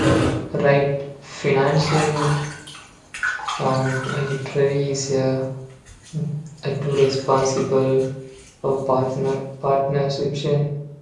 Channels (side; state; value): both; identical; correlation 1.00